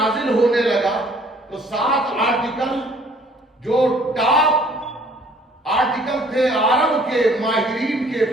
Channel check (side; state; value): both; normal; correlation 0.57